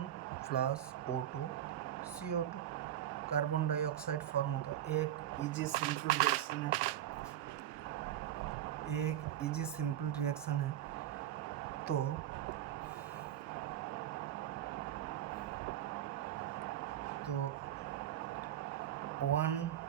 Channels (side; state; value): left; quieter; 11.8 dB